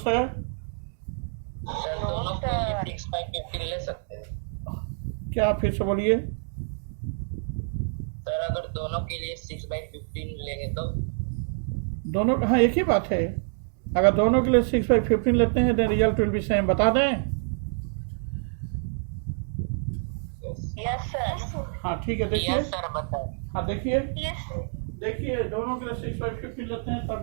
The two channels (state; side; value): silent; left; digital silence